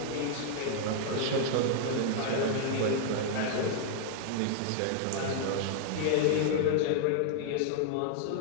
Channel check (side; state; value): both; different; correlation -0.01